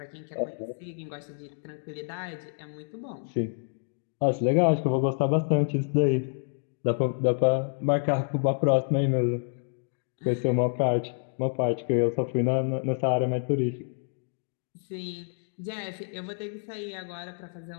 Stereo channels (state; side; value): silent; right; digital silence